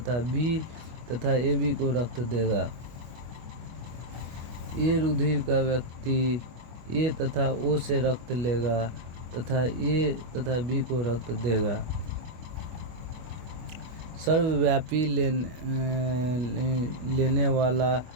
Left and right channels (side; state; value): left; late; 25 ms